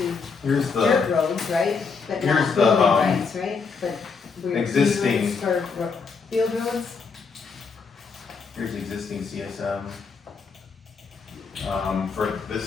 here's dirt the, roads, right? But here's not the, building rights, right? But we're existing- easements for field roads? here's the existing CSM. For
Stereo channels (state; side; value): quieter; right; 5.2 dB